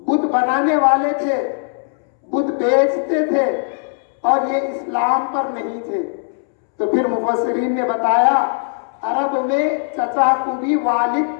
بت بنانے والے تھے, بت بیچتے تھے اور یہ اسلام پر نہیں تھے. تو پھر مفسرین نے بتایا عرب میں چچا کو بھی والد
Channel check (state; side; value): silent; right; 67 dB below the other